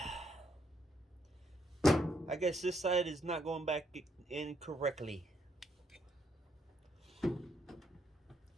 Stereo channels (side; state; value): both; normal; correlation 0.74